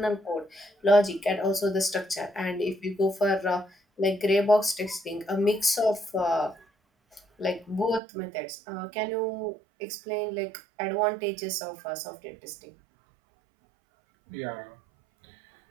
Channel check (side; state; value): left; drops out; at 8.0 s